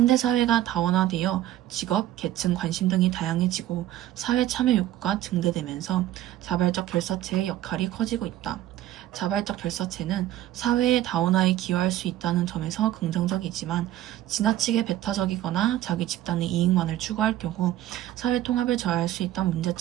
다원화되어 직업, 계층, 관심 등이 다양해지고 사회 참여 욕구가 증대되면서 자발적 결사체의 역할이 커지고 있다. 자발적 결사체는 사회의 다원화에 기여할 수 있다는 점에서 긍정적이지만 지나치게 배타적이거나 자기 집단의 이익만을 추구할 경우 사회 통합을 저해할 수 있다는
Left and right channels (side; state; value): left; quieter; 13.5 dB